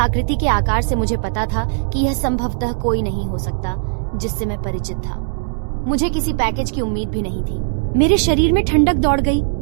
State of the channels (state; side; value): silent; left; digital silence